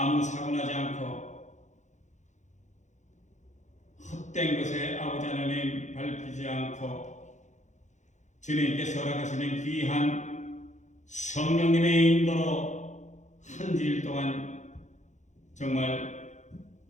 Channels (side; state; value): right; late; 0.35 ms